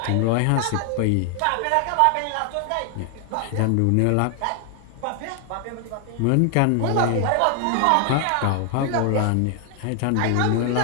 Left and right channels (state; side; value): different; both; correlation 0.00